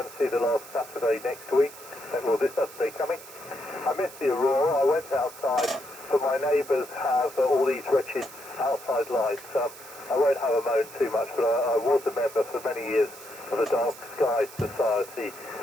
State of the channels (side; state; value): right; noise; hiss, 17 dB below the sound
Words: see the last Saturday next week. Well, this Saturday coming. I missed the Aurora. I went outside, but my neighbours have all these wretched outside lights. I won't have a moan too much, but I was a member for many years of the Dark Sky Society,